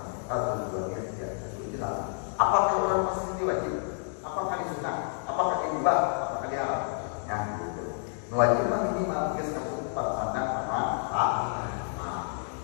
Tujuannya tidak jelas. Apakah orang pasti wajib? Apakah disunah? Apakah dibah? Apakah diharam? Ya, gitu. Wajib minimal geus kesukupan pandang sama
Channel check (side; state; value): right; silent; 58 dB below the other